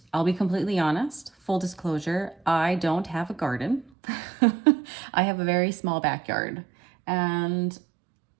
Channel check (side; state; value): left; drops out; at 3.9 s